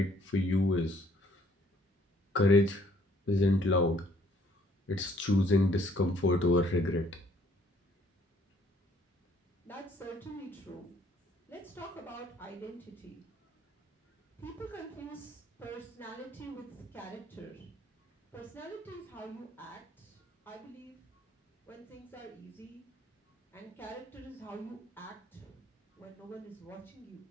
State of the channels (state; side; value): normal; both; correlation 0.62